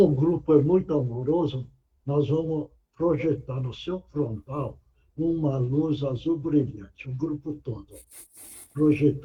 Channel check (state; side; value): identical; both; correlation 1.00